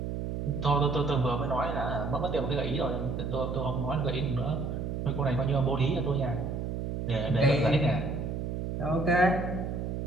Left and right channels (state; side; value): noise; right; hum, 3 dB below the sound